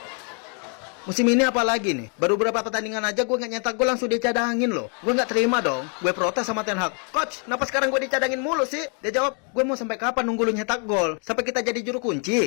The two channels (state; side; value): quieter; right; 39.4 dB